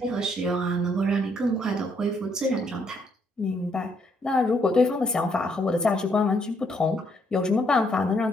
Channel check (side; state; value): both; normal; correlation 0.71